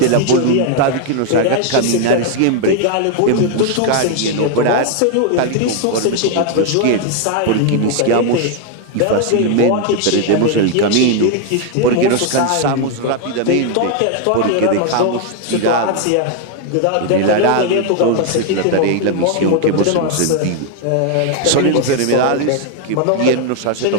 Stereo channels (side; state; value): both; different; correlation 0.01